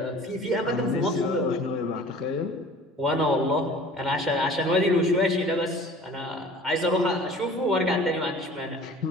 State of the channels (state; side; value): normal; both; correlation 0.46